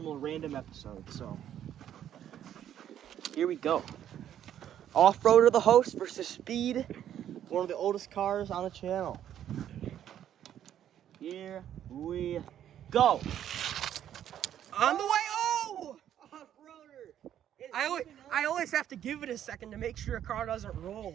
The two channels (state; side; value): quieter; left; 10.5 dB